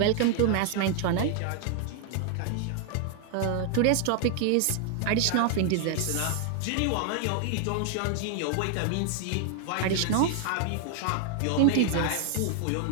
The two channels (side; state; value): both; different; correlation 0.00